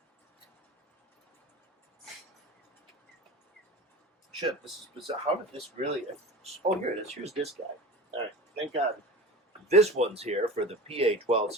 shit, this is bizarre. How did this really... Oh, here it is. Here's this guy. All right, thank God. This one's here for the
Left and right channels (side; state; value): both; normal; correlation 0.34